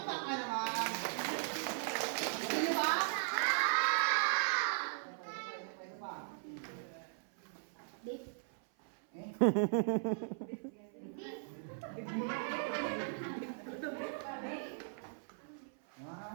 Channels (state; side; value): silent; left; 52 dB below the other